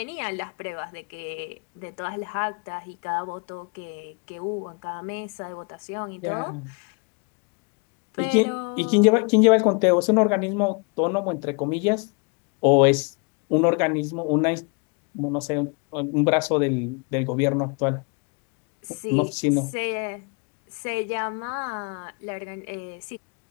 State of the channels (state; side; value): quieter; right; 34.6 dB